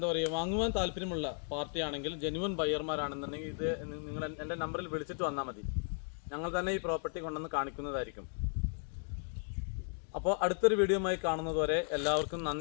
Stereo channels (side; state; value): right; silent; 54 dB below the other